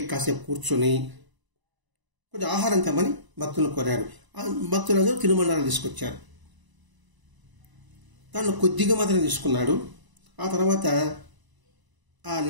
కాసేపు కూర్చొని కొంచెం ఆహారం తెమ్మని భక్తులను కోరారు. ఆ భక్తులందరూ తినుబండారాలు తీసుకొచ్చారు. దానిలో కొద్దిగా మాత్రం తీసుకున్నాడు. ఆ తర్వాత ఆ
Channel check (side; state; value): left; late; 1.0 ms